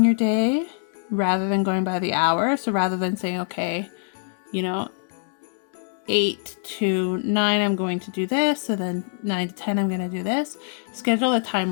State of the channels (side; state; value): right; silent; 62 dB below the other